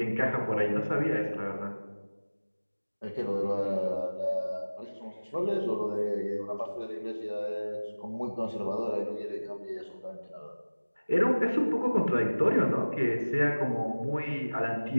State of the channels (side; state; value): both; inverted; correlation -1.00